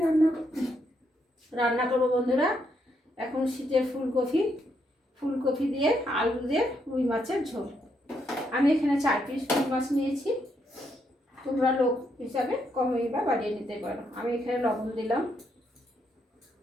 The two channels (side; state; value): both; normal; correlation 0.77